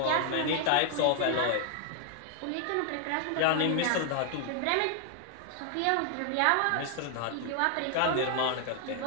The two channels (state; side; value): different; both; correlation 0.00